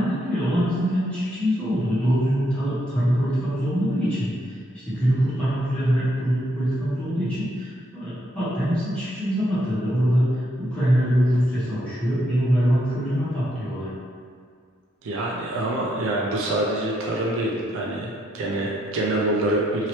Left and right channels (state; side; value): normal; both; correlation 0.75